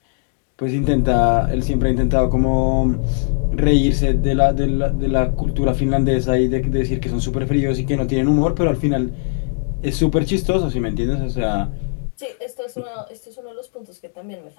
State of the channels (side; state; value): right; silent; digital silence